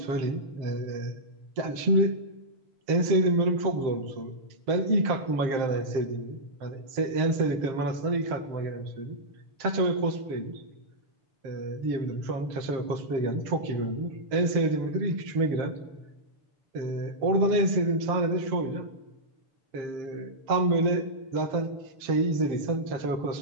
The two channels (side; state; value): left; late; 7.5 ms